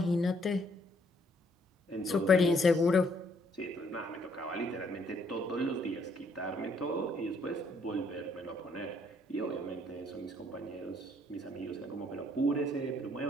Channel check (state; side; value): normal; both; correlation 0.67